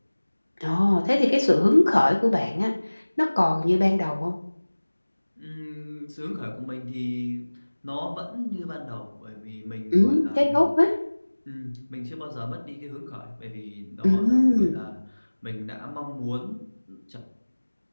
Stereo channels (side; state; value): both; inverted; correlation -1.00